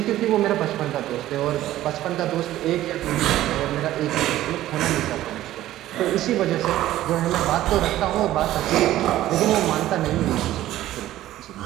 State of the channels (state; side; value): quieter; left; 14.3 dB